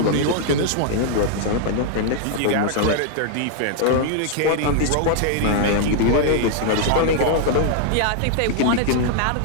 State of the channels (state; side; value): different; both; correlation -0.01